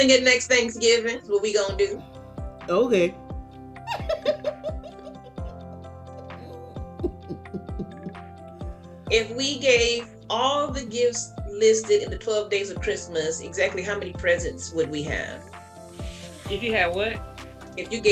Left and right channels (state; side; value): identical; both; correlation 1.00